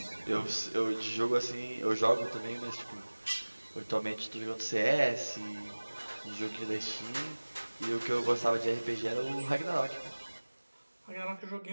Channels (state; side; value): inverted; both; correlation -1.00